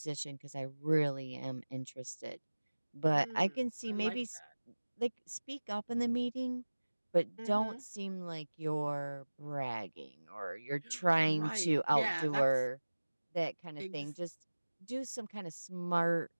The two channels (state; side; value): inverted; both; correlation -1.00